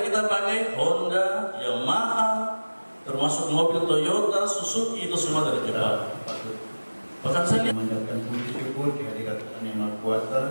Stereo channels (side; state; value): both; inverted; correlation -1.00